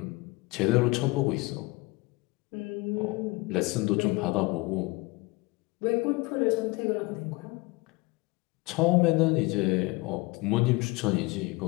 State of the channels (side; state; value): right; quieter; 23.7 dB